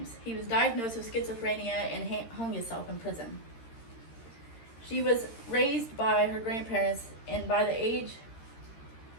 He was diagnosed with schizophrenia and hung himself in prison. She was raised by her grandparents, and by age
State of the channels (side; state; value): right; late; 13 ms